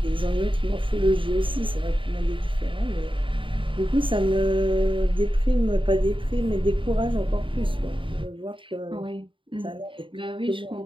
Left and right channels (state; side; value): late; left; 0.25 ms